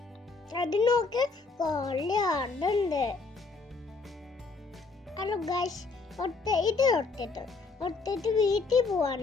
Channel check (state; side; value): quieter; right; 4.1 dB